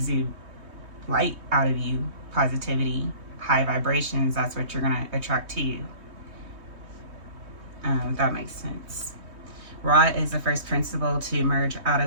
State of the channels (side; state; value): left; late; 3.2 ms